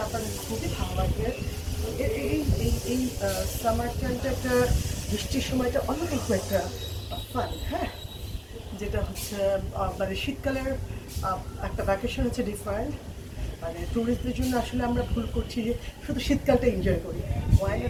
আপনাদের খুবই ভালো লাগবে। এই সামার টাইমটা, একটা বৃষ্টির সময়টা অন্যরকম একটা ফান। হ্যাঁ, যেটা হচ্ছে মানে শীতকালের একটা ভ্যাকেশন হচ্ছে ডিফারেন্ট। মানে ট্যুরিস্টদের জন্য আসলে আমরা ভুল করছি যে শুধু শীতকালটা এনজয় করি,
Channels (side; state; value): both; identical; correlation 1.00